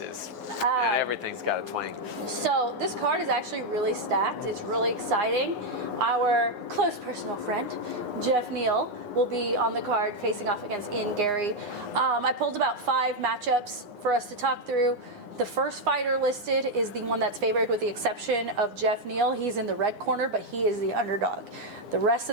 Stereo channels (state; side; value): late; left; 9.7 ms